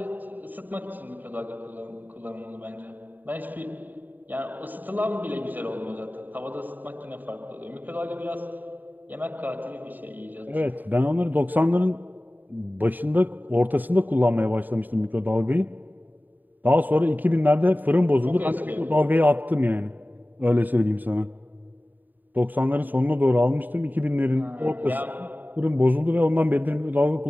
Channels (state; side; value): late; left; 0.088 ms